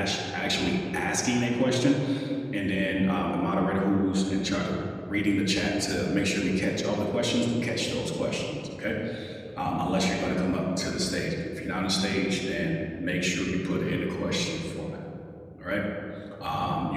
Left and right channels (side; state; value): both; identical; correlation 1.00